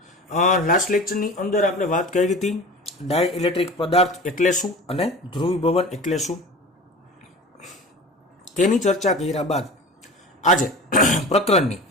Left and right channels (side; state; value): both; normal; correlation 0.36